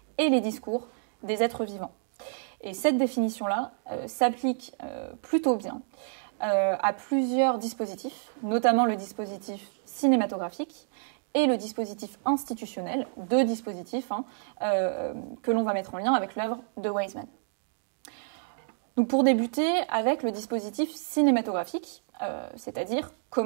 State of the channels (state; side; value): silent; left; digital silence